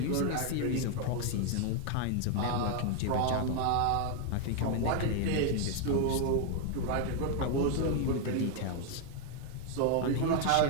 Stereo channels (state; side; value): different; both; correlation 0.00